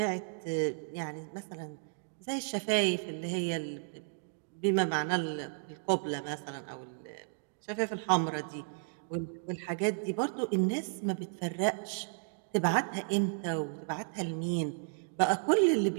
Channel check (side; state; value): left; silent; digital silence